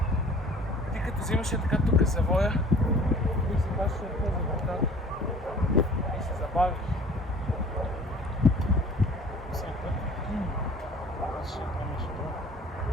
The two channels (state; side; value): normal; both; correlation 0.49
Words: Ти като взимаш така тук завоя, тук се плаща за вратата. И се забавиш. Всеки път. Аз ще помеш това.